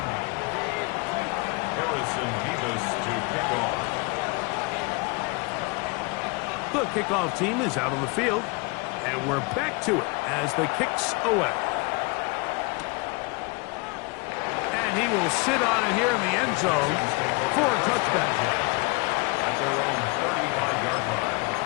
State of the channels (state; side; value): quieter; right; 28.4 dB